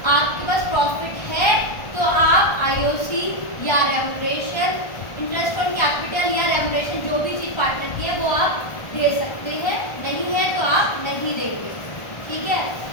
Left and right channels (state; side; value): late; right; 1.4 ms